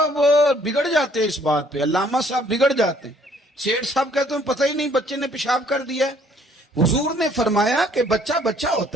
بگڑ جاتے ہیں اس بات پہ. علامہ صاحب بگڑ جاتے ہیں. سیٹھ صاحب کہتے ہیں پتہ ہی نہیں بچے نے پیشاب کر دیا ہے. حضور نے فرمایا کہ بچہ بچہ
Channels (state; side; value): normal; both; correlation 0.62